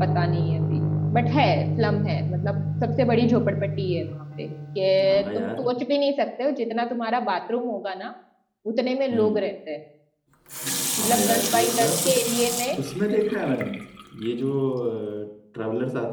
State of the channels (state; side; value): identical; both; correlation 1.00